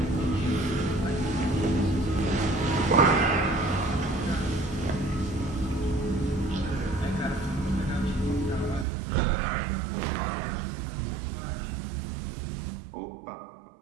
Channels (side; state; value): left; drops out; at 8.8 s